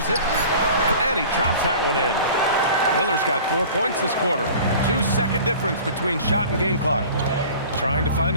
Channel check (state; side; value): inverted; both; correlation -0.43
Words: it, and he drops that one in. Miller's got 4 points this quarter. 2-second difference between shot and game clock. Trying to find